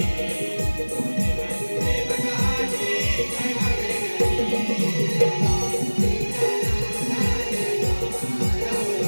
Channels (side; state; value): both; inverted; correlation -1.00